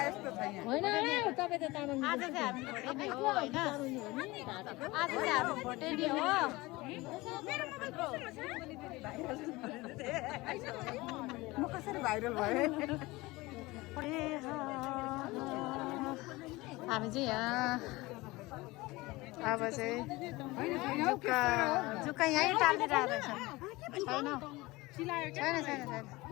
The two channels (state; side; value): quieter; right; 21.3 dB